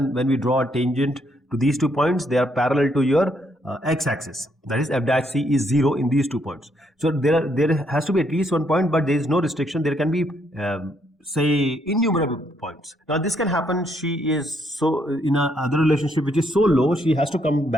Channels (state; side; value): normal; both; correlation 0.73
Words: when we draw a tangent to these 2 points, they are parallel to your x-axis. That is f dash c is 0 in these 2 points. So there has to be at least 1 point, but there is no restriction. There can be say innumerable points. Now this can happen. She is so in a other relationship which is so low, she has to come